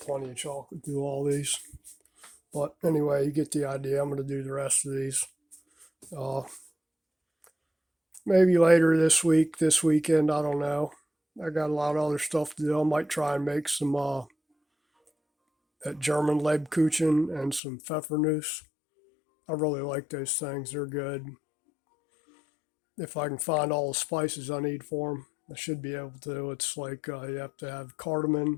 of chocolate through all these. But anyway, you get the idea. I'm gonna do the rest of these. Uh, Maybe later this week, this weekend. I don't know. I got a lot of other stuff to do. I might try and make some that German Lebkuchen and some Pfeffernuss. I really like those things. They're good. If I can find all the spices I need for them, I should be able to. It's like you have to have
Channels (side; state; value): right; drops out; at 17.6 s